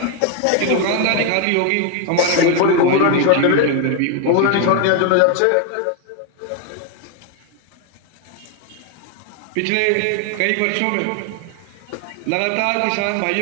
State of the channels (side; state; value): both; different; correlation 0.01